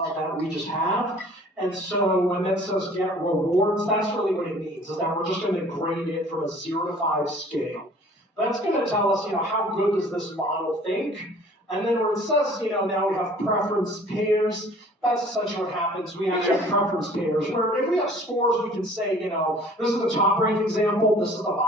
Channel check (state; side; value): normal; both; correlation 0.51